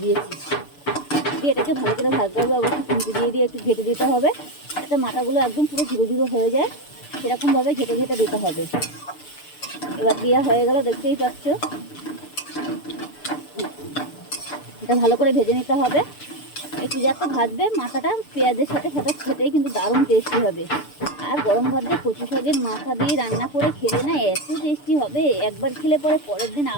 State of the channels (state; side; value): late; right; 6.8 ms